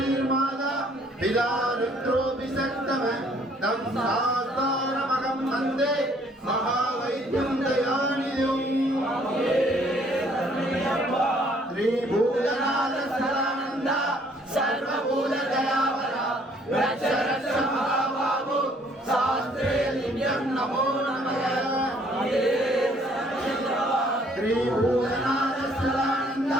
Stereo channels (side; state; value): both; normal; correlation 0.62